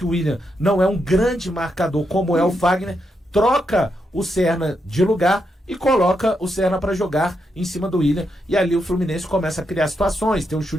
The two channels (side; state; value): both; normal; correlation 0.82